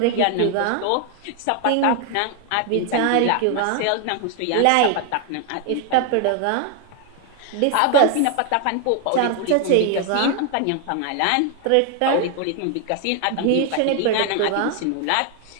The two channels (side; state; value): both; different; correlation 0.01